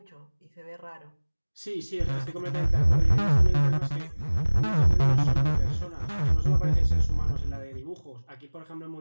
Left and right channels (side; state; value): both; inverted; correlation -1.00